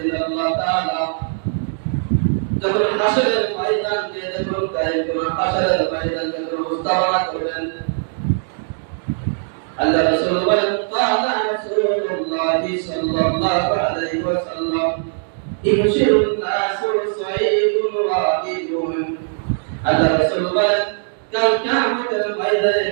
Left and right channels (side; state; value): left; silent; digital silence